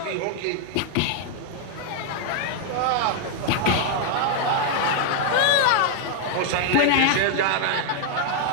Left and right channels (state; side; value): different; both; correlation 0.00